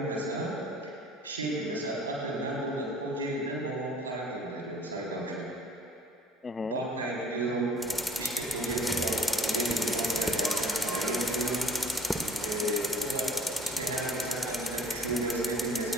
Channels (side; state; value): both; normal; correlation 0.51